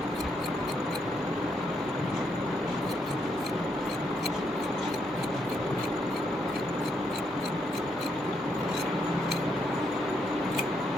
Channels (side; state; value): both; normal; correlation 0.77